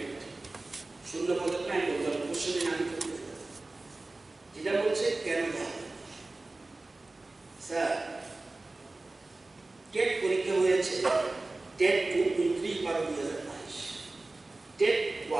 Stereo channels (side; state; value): left; quieter; 3.1 dB